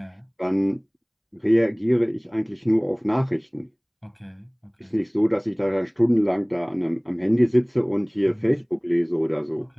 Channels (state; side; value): identical; both; correlation 1.00